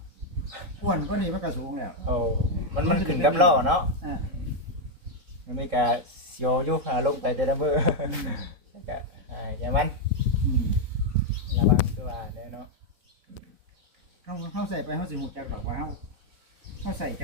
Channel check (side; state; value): left; late; 4.0 ms